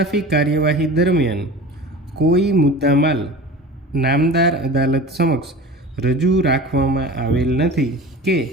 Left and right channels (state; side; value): normal; both; correlation 0.36